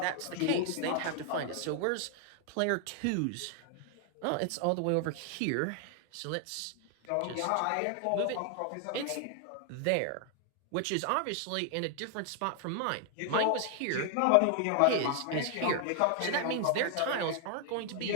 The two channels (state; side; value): different; both; correlation 0.00